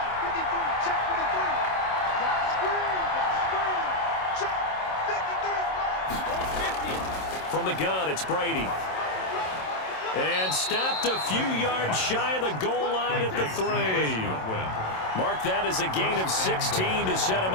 From the gun, it's Brady. And stopped a few yards shy of the goal line at the 3. Mark that as a gain of 16 to set him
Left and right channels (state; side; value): late; right; 27 ms